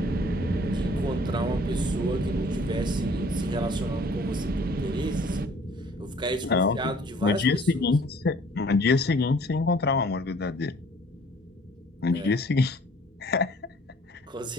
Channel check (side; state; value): both; normal; correlation 0.55